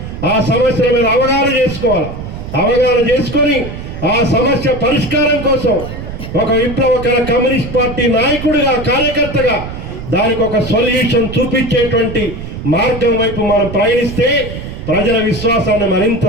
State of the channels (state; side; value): noise; right; rumble, 9 dB below the sound